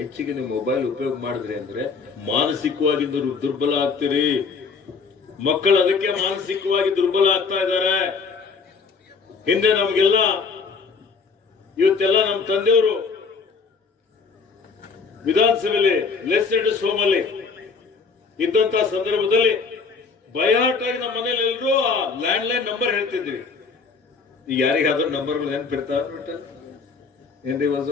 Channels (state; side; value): quieter; right; 4.9 dB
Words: ನೀವು ಮೊಬೈಲ್ ಉಪಯೋಗ ಮಾಡಿದ್ರಿ ಅಂದ್ರೆ ಮಾನಸಿಕವಾಗಿ ದುರ್ಬಲ ಆಗ್ತೀರಿ. ಮಕ್ಕಳು ಅದಕ್ಕೆ ಮಾನಸಿಕವಾಗಿ ದುರ್ಬಲ ಆಗ್ತಾ ಇದ್ದಾರೆ. ಹಿಂದೆ ನಮಗೆಲ್ಲ ಇವತ್ತೆಲ್ಲ ನಮ್ಮ ತಂದೆಯವರು ವಿಧಾನಸಭೆಯಲ್ಲಿ ಲೆಜಿಸ್ಲೇಟಿವ್ ಹೋಮಲ್ಲಿ ಇದ್ದಂತಹ ಸಂದರ್ಭದಲ್ಲಿ ಬಯಾಟಾಗಿ ನಮ್ಮ ಮನೇಲಿ ಎಲ್ಲರೂ ಆ ಲ್ಯಾಂಡ್ ಲೈನ್ ನಂಬರ್ ಹೇಳ್ತಿದ್ವಿ. ಈಗ ಯಾರಿಗಾದ್ರೂ ನಂಬರ್ಗಳು ನೆನಪಿರ್ತಾವ ಏನ್ರಿ